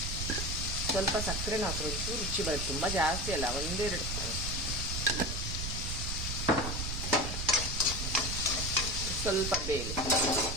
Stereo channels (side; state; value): right; noise; rumble, 3 dB below the sound